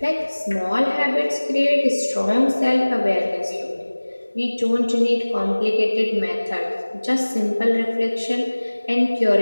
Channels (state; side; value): inverted; both; correlation -1.00